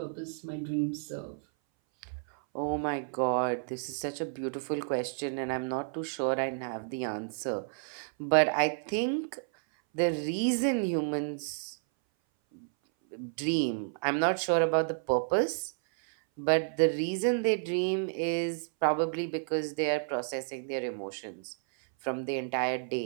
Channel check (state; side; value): silent; left; 57 dB below the other